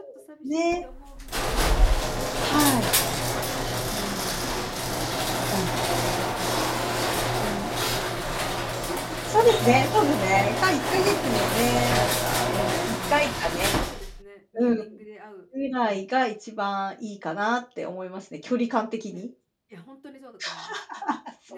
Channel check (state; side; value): identical; both; correlation 1.00